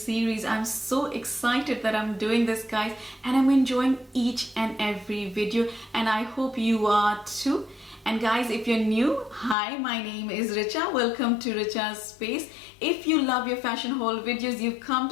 I'm so excited that I'm doing this, guys, and I'm enjoying each and every video, and I hope you are too. And guys, if you're new, hi, my name is Richa. Welcome to Richa's Space. If you love your fashion haul videos, you've come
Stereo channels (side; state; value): right; drops out; at 9.6 s